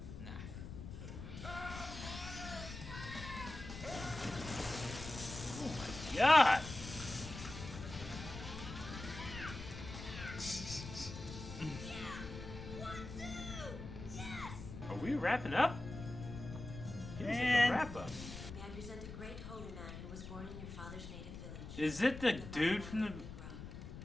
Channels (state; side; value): noise; left; rumble, 10 dB below the sound